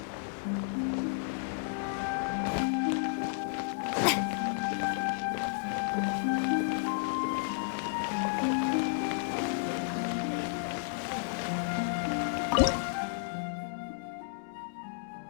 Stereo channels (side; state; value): right; silent; digital silence